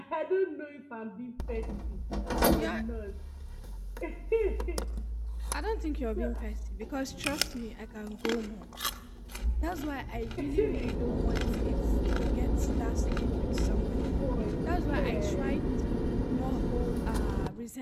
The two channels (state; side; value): identical; both; correlation 1.00